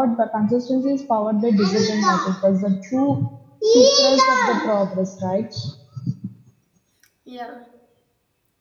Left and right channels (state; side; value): identical; both; correlation 1.00